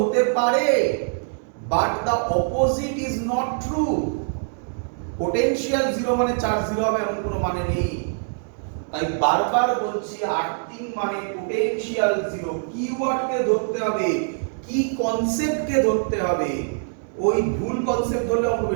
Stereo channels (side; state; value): left; silent; digital silence